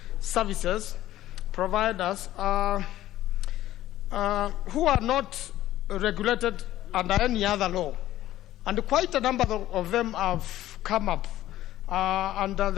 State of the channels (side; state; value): right; quieter; 14.2 dB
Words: services providers who are not regulated under any other law. And quite a number of them have come up, and